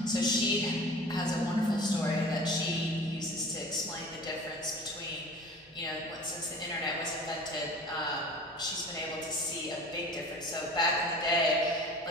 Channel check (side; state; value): both; normal; correlation 0.41